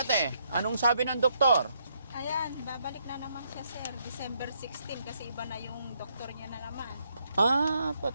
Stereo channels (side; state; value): both; inverted; correlation -0.74